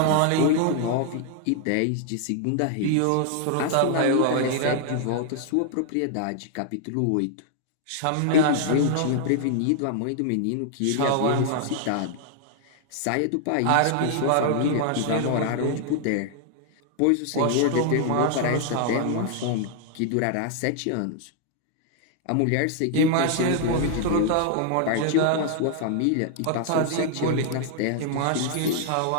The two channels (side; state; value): both; different; correlation 0.00